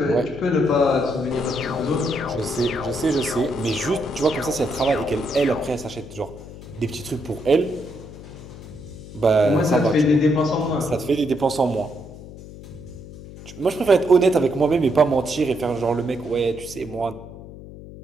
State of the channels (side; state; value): left; noise; hum, 15 dB below the sound